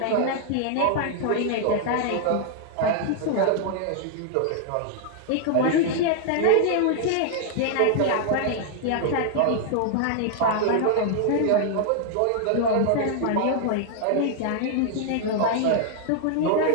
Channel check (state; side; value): different; both; correlation -0.01